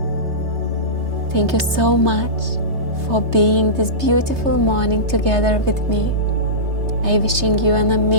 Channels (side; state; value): left; late; 3.3 ms